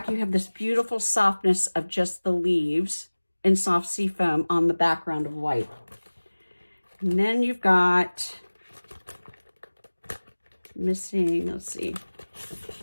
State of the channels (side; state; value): both; inverted; correlation -1.00